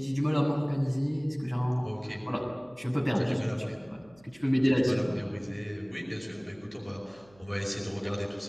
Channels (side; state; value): right; noise; hum, 28 dB below the sound